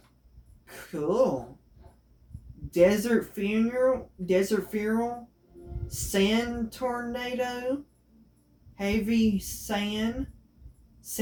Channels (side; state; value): both; identical; correlation 1.00